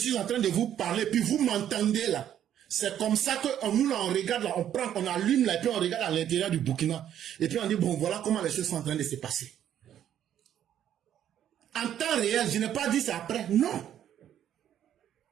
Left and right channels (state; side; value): quieter; left; 10.5 dB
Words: en train de vous parler, puis vous m'entendez là. C'est comme ça que nous là, on regarde là, on prend, on allume là, et puis on regarde à l'intérieur du Burkina. Et puis on dit, bon, voilà comment les choses sont en train de se passer. En temps réel, je n'ai pas dit ça après, non.